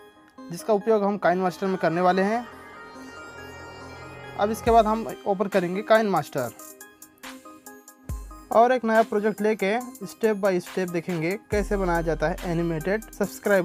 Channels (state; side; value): identical; both; correlation 1.00